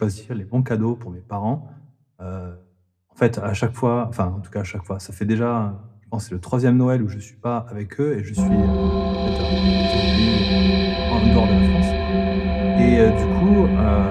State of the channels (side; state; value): both; identical; correlation 1.00